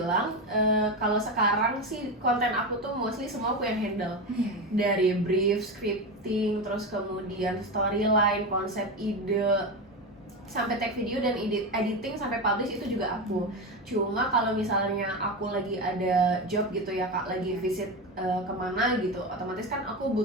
kalau sekarang sih konten aku tuh mostly semua aku yang handle. Dari brief, scripting, terus kemudian storyline, konsep ide, sampai tag video dan editing sampai publish itu juga aku. Cuma kalau misalnya aku lagi ada job gitu ya Kak, lagi visit kemana gitu, otomatis kan aku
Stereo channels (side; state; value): both; normal; correlation 0.18